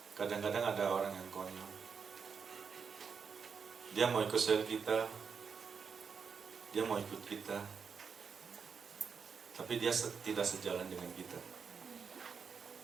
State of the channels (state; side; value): quieter; left; 6.0 dB